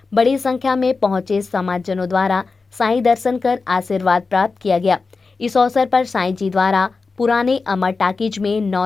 बड़ी संख्या में पहुंचे समाजजनों द्वारा साईं दर्शन कर आशीर्वाद प्राप्त किया गया। इस अवसर पर साईं जी द्वारा पुराने अमर टाकीज में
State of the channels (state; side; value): quieter; right; 4.2 dB